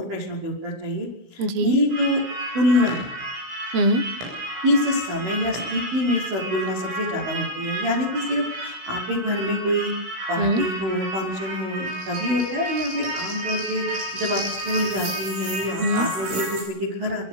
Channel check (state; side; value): late; left; 16 ms